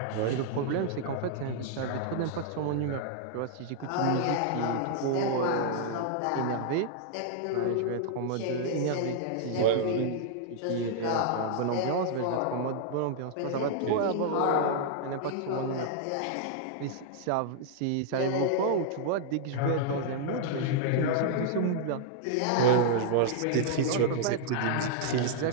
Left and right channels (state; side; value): different; both; correlation -0.01